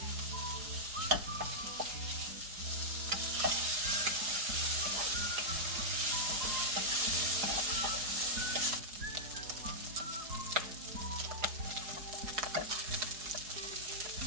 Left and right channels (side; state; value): left; late; 4.8 ms